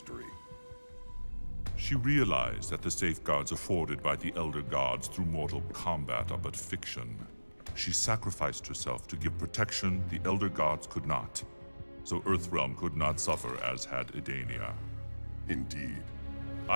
She realized that the safeguards afforded by the Elder Gods through Mortal Kombat are but fiction. She sacrificed herself to give protection the Elder Gods could not, so Earthrealm could not suffer as had Edania. Indeed.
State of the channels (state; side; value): inverted; both; correlation -1.00